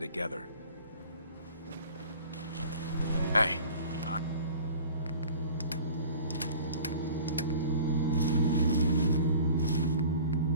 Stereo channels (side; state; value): both; inverted; correlation -0.44